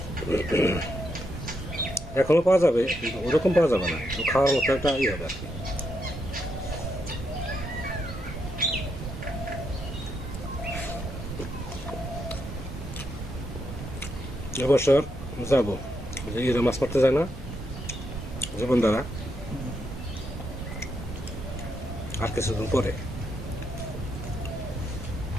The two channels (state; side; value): normal; both; correlation 0.80